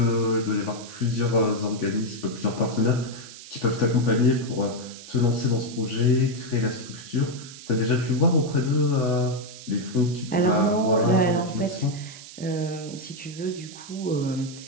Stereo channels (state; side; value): noise; right; hiss, 16 dB below the sound